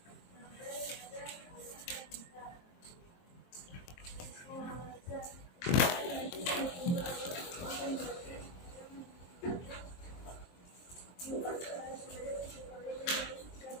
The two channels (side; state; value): right; late; 23 ms